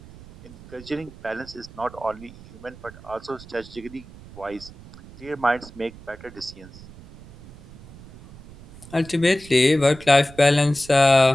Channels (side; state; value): right; noise; rumble, 19 dB below the sound